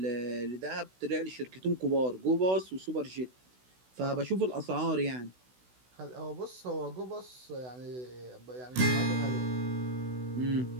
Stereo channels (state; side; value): late; left; 16 ms